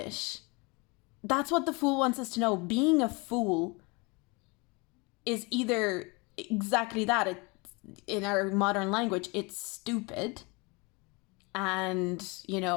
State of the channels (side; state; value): right; quieter; 28.2 dB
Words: that's what the Fool wants us to know. Being a fool is either exactly that. In our modern language, it's stupid. And, you